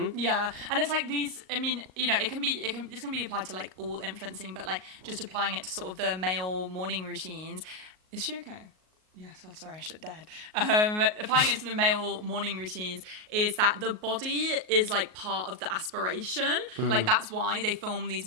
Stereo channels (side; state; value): left; late; 38 ms